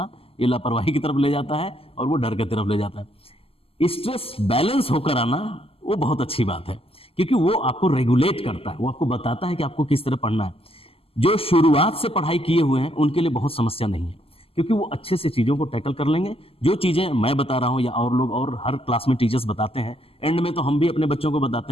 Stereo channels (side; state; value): right; late; 0.28 ms